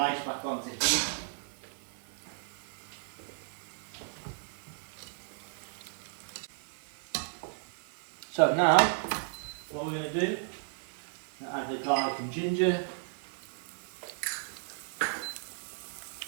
back onto heat. So now, what we're going to do, add the garlic and ginger,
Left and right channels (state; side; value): silent; left; digital silence